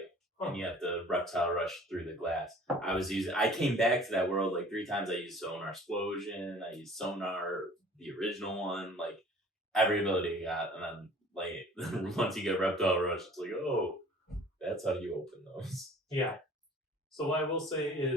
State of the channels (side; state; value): both; normal; correlation 0.49